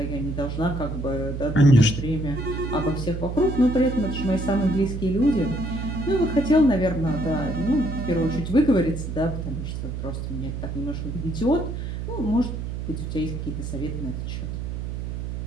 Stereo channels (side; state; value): right; noise; hum, 5 dB below the sound